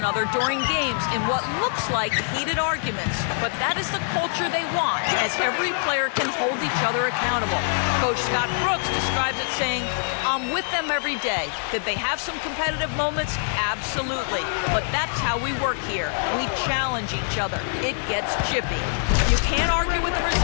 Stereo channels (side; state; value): right; silent; 62 dB below the other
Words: during games in what looks like heated arguments. But that is the culture they want, as every player can hold each other accountable. Coach Scott Brooks describes it saying, "I'm with them every day." Did they have some competitive moments? Absolutely. But that's how we work here. We challenge each other. It gets chippy. You can't argue with the